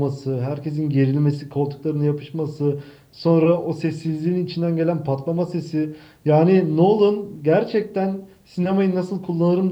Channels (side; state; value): both; identical; correlation 1.00